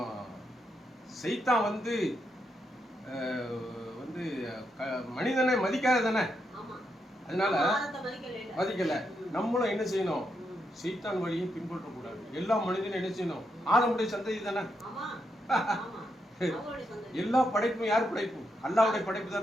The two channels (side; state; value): both; normal; correlation 0.82